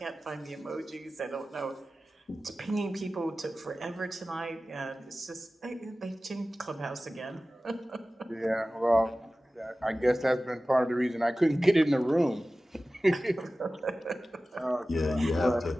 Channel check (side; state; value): both; normal; correlation 0.96